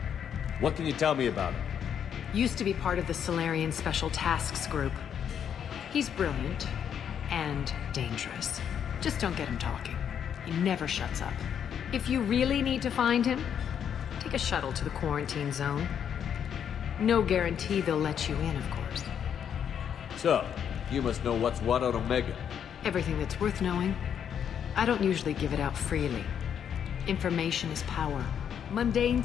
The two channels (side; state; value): right; quieter; 8.5 dB